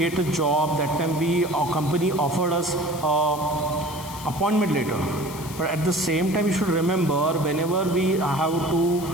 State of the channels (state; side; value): noise; left; hiss, 14 dB below the sound